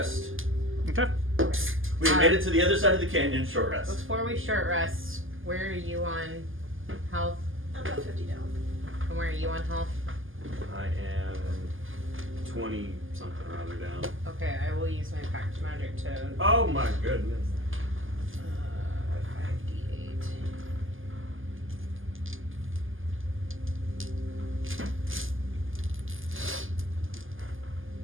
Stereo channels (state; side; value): late; left; 0.58 ms